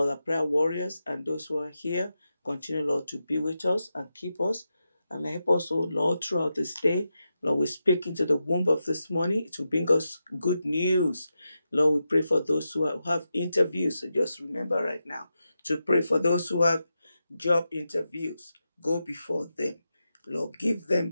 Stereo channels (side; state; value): both; inverted; correlation -0.89